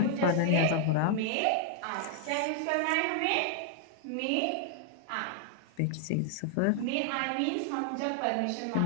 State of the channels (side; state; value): both; different; correlation 0.00